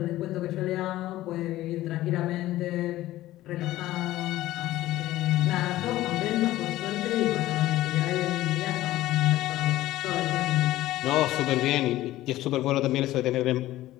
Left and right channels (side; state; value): right; quieter; 15.6 dB